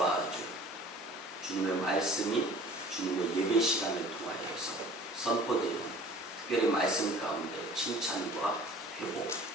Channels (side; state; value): both; normal; correlation 0.47